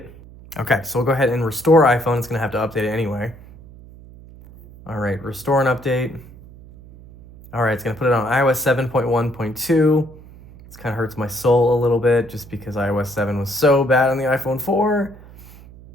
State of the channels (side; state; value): right; noise; hum, 20 dB below the sound